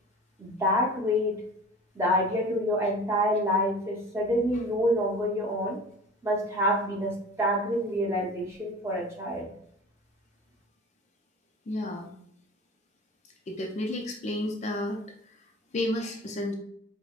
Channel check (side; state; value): both; normal; correlation 0.38